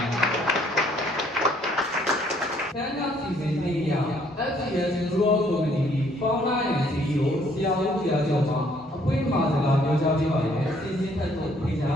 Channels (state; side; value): normal; both; correlation 0.64